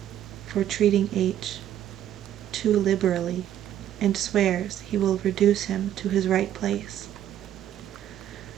for treating H too liberally, and swears he will reduce him to his right place.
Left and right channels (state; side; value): quieter; left; 11.2 dB